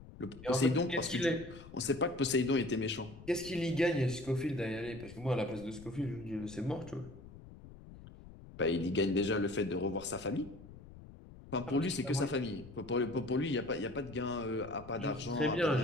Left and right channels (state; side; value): noise; left; rumble, 17 dB below the sound